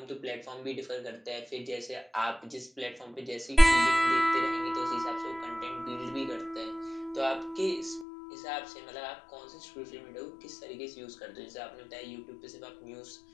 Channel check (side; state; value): right; drops out; at 8.1 s